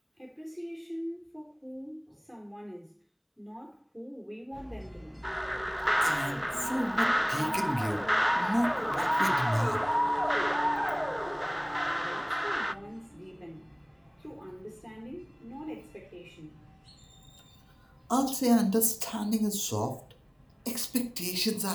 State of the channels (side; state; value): both; identical; correlation 1.00